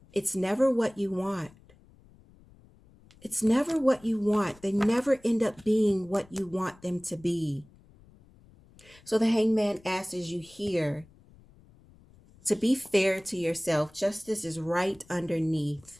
it's never what you want. It's never what you want. They never end up being what you want them to be. So the hangman asks you here to be fair to yourself. Justice is right underneath.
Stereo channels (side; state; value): left; noise; rumble, 26 dB below the sound